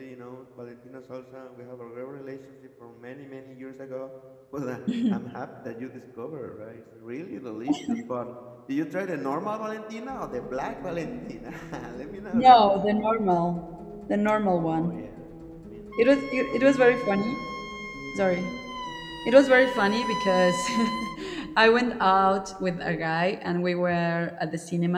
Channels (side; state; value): both; identical; correlation 1.00